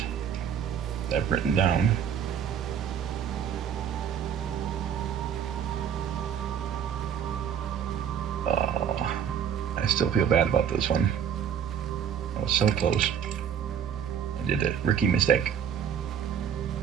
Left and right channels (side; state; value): left; quieter; 8.3 dB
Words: that I've written down. Oh, I still feel bad about this one. I was so close. I did a rookie mistake.